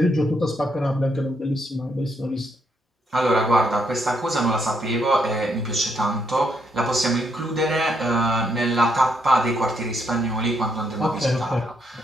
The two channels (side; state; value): both; normal; correlation 0.76